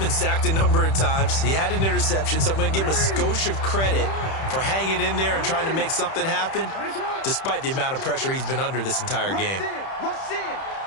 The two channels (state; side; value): late; right; 31 ms